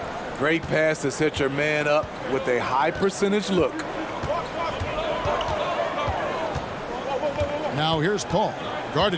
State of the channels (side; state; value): both; identical; correlation 1.00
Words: Great pass to set your man up with a high percentage look. Now here's Paul,